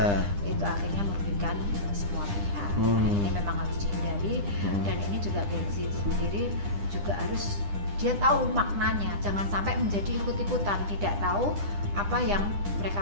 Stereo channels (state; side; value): late; left; 9.9 ms